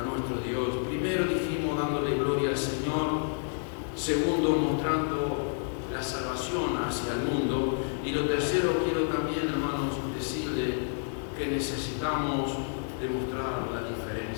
nuestro Dios? Primero dijimos dándole gloria al Señor. Segundo, mostrando la salvación hacia el mundo. Y lo tercero, quiero también, hermanos, decirle que necesitamos demostrar la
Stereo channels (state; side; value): silent; right; 58 dB below the other